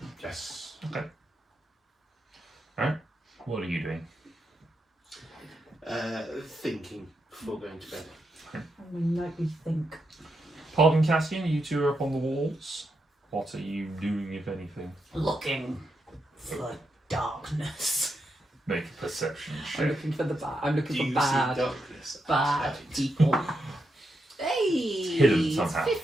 Yes. Okay. Alright. What are you doing? Thinking before going to bed. Nightly think. Pardon, Cassian, you two are up on the walls. What are you doing, if anything? Looking for darkness. Make a perception I'm check. looking for the bad. I'm looking Do for you see bad darkness? people. Hey! Hidden somehow.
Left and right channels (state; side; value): normal; both; correlation 0.84